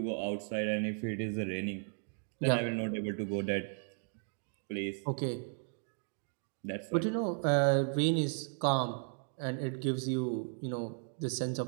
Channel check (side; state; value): left; silent; 54 dB below the other